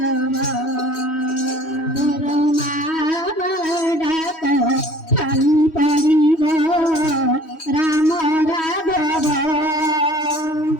তোর মামা ডাকো খালি পড়িব রাম রাঘব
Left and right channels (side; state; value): right; late; 3.1 ms